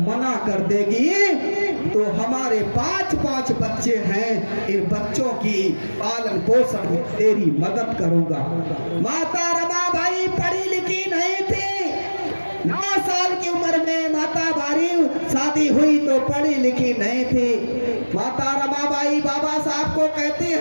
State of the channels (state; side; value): inverted; both; correlation -1.00